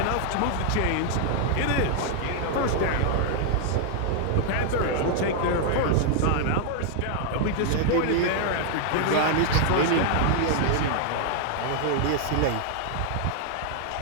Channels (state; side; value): different; both; correlation 0.00